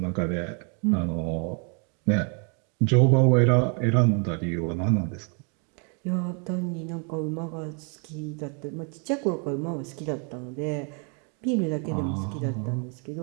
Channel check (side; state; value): left; quieter; 37.6 dB